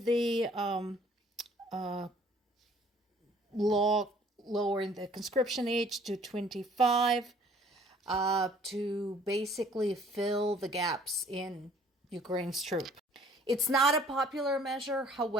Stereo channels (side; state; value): both; normal; correlation 0.56